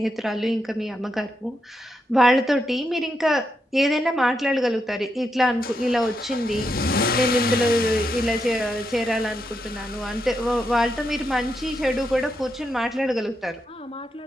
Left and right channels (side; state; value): both; normal; correlation 0.83